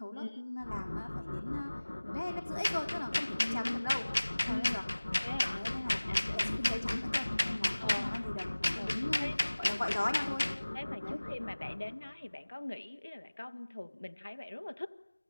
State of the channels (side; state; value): both; inverted; correlation -1.00